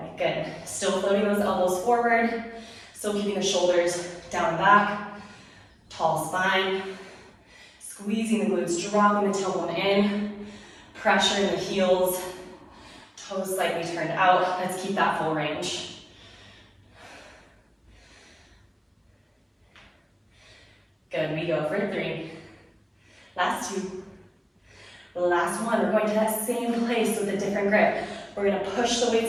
Good. Still floating those elbows forward. Still keeping the shoulders down and back. Tall spine. Squeezing the glutes, dropping the tailbone in. Pressure in the heels. Toes slightly turned out. Let's keep that full range. Good, we go for 3. Last 2. The last 1, we're going to that same place with a different grip. We're gonna push the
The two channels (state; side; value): identical; both; correlation 1.00